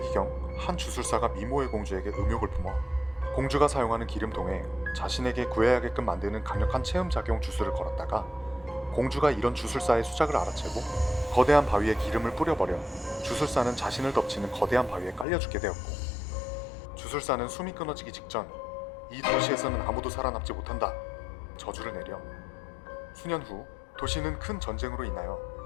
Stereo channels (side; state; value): right; drops out; at 15.2 s